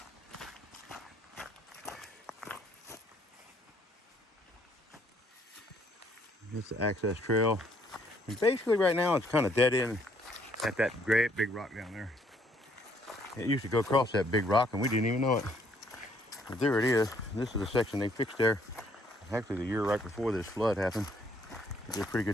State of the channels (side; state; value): both; normal; correlation 0.66